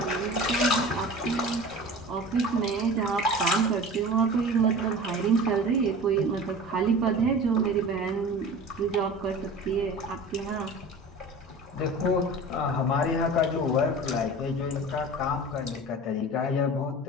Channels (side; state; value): both; normal; correlation 0.37